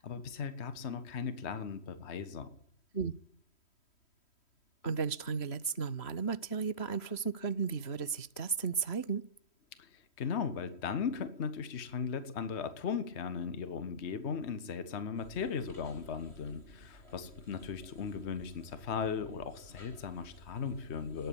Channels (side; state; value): right; late; 3.0 ms